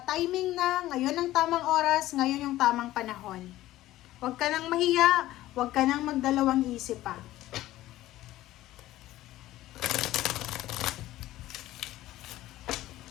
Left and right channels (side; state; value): right; quieter; 15.4 dB